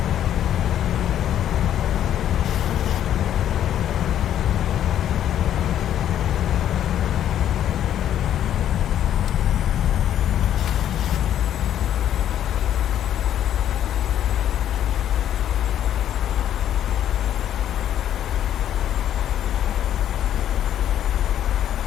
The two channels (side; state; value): right; quieter; 10.7 dB